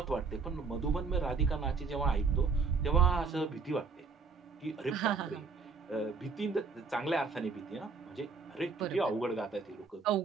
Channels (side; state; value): left; quieter; 4.8 dB